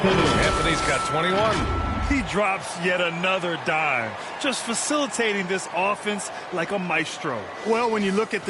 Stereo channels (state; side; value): identical; both; correlation 1.00